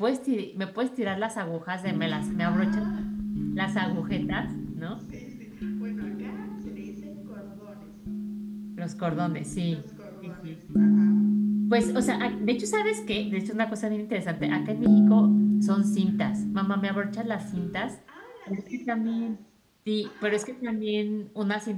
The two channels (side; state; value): both; identical; correlation 1.00